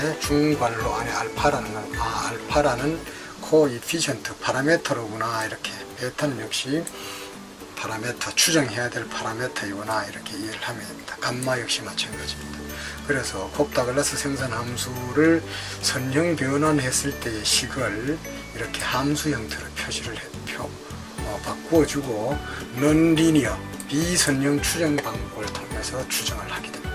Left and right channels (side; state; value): both; identical; correlation 1.00